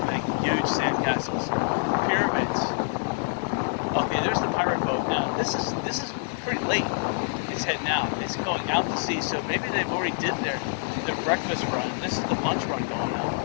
make huge sand castles, pyramids. Okay, there's the pirate boat now. This is pretty late. It's heading out. It's going out to sea, so maybe they've already did their breakfast run. This is the lunch run going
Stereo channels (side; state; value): right; silent; digital silence